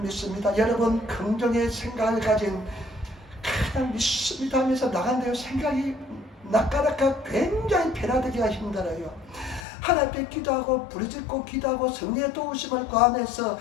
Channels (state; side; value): drops out; right; at 9.7 s